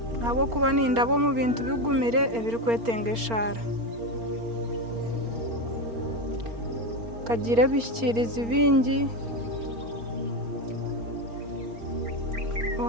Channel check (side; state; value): left; late; 4.4 ms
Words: abo kuba nindabo mu bintu bigumire ebiri kwetengeshara kagira bishikiriza ibingi